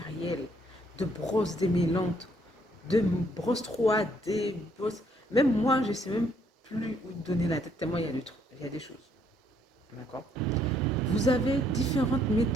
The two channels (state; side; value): normal; both; correlation 0.68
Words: de brosses démêlantes, de brosses 3D, brosses... Même moi, je ne sais même plus où donner la tête, tellement il y a des choses. D'accord? Vous avez différentes